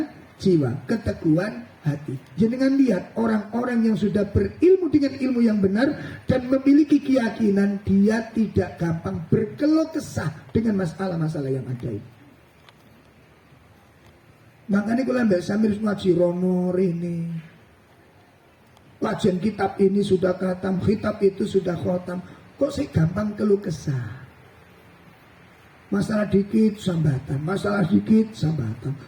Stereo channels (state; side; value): identical; both; correlation 1.00